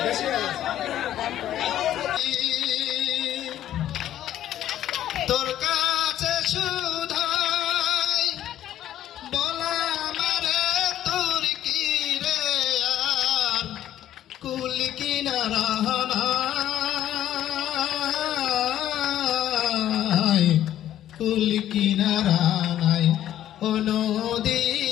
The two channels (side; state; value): right; quieter; 12.0 dB